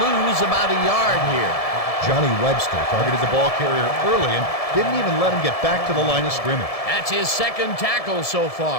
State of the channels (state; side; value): late; right; 1.7 ms